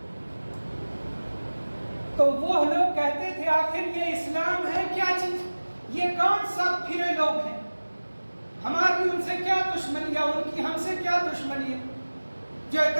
تو وہ لوگ کہتے تھے آخر یہ اسلام ہے کیا چیز؟ یہ کون سا پھرے لوگ ہیں؟ ہماری ان سے کیا دشمنی ہے، ان کی ہم سے کیا دشمنی ہے جو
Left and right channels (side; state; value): both; inverted; correlation -1.00